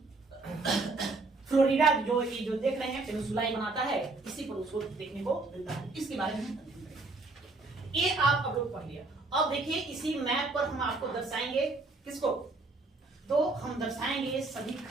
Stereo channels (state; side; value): quieter; left; 3.4 dB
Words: फ्लोरिडा, जो ये जो देख रहे हैं पेनिनसुला बनाता है, इसी पर उसको देखने को मिलता है। इसके बारे में ये आप अब लोग पढ़ लिया। अब देखिए इसी मैप पर हम आपको दर्शाएंगे किसको? तो हम दर्शाएंगे सभी